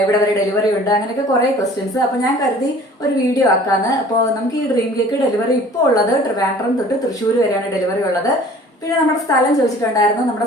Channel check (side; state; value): both; normal; correlation 0.49